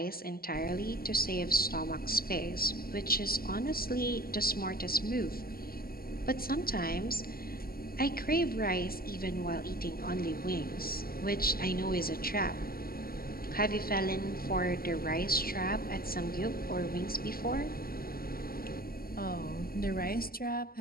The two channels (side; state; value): right; late; 0.43 ms